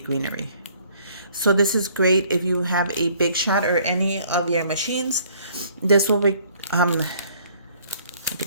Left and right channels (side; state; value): both; inverted; correlation -0.60